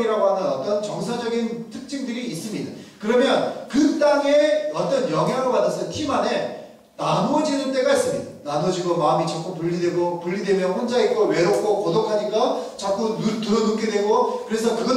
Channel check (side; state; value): both; identical; correlation 1.00